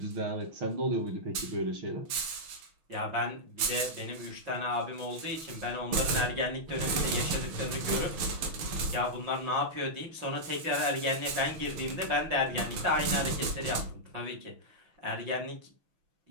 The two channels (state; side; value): late; left; 6.2 ms